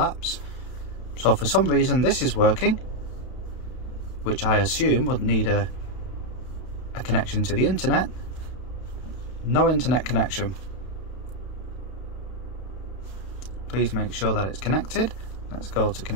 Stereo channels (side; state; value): right; late; 32 ms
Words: So for some reason this is working, which I assume would need a connection to the internet. No internet connection. Please make sure that it's connected. Let's go to